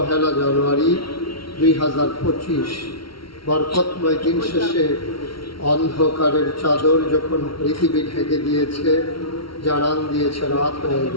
জানুয়ারি ২০২৫ বরকতময় দিন শেষে অন্ধকারের চাদর যখন পৃথিবী ঢেকে দিয়েছে, জানান দিয়েছে রাত হয়ে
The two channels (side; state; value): right; late; 0.74 ms